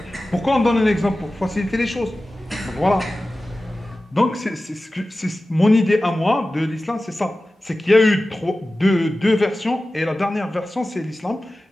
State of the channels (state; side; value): normal; both; correlation 0.95